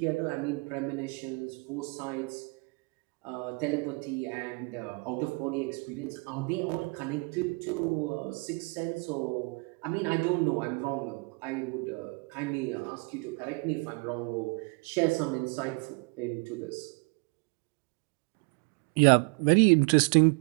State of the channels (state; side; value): quieter; left; 31.5 dB